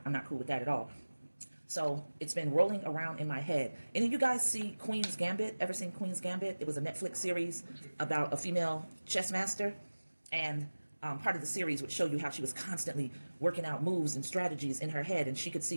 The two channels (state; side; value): inverted; both; correlation -1.00